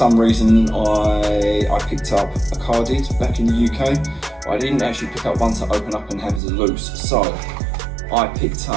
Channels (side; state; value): left; drops out; at 6.4 s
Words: reason I picked up a carded back in the UK. I didn't actually pick up one to open up and have as a loose, so I picked